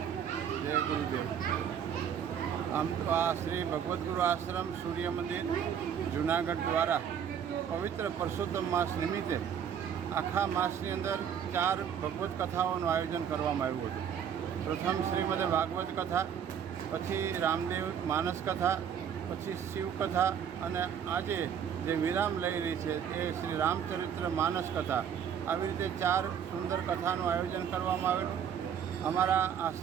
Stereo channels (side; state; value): left; quieter; 8.4 dB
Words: જય ગુરુદેવ. આમ તો આ શ્રી ભગવદ્ ગુરુ આશ્રમ સૂર્ય મંદિર જૂનાગઢ દ્વારા પવિત્ર પુરુષોત્તમ માસ નિમિત્તે આખા માસની અંદર 4 ભગવદ્ કથાઓનું આયોજન કરવામાં આવ્યું હતું. પ્રથમ શ્રીમદ ભાગવત કથા, પછી રામદેવ માનસ કથા, પછી શિવકથા અને આજે જે વિરામ લઈ રહી છે એ શ્રી રામચરિત્ર માનસ કથા. આવી રીતે 4 સુંદર કથાનું આયોજન કરવામાં આવેલું. અમારા